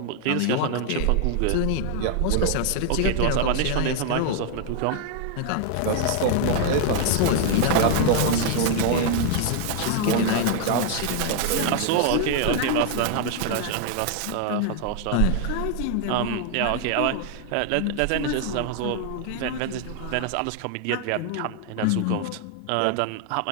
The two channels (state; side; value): different; both; correlation 0.00